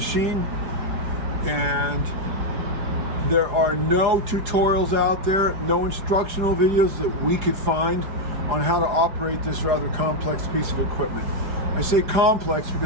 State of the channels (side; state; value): left; late; 5.0 ms